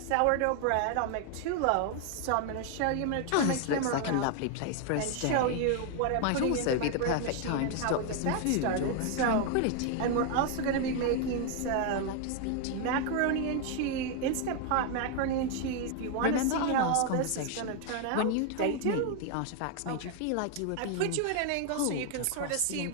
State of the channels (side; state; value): both; different; correlation 0.01